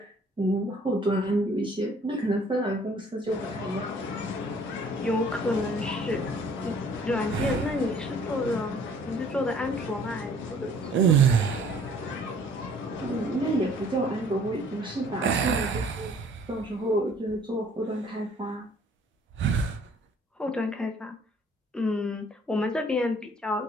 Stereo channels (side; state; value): both; normal; correlation 0.56